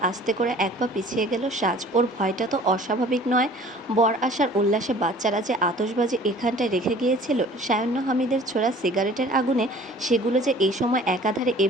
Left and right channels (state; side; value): normal; both; correlation 0.49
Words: আস্তে করে এক পা পিছিয়ে গেল সাজ। ওর ভয়টা তো অস্বাভাবিক নয়। বর আসার উল্লাসে বাচ্চারা যে আতশবাজি এখানটায় রেখে গিয়েছিল, সায়ান্ন হামিদের ছোড়া সিগারেটের আগুনে সেগুলো যে এই সময় একাধারে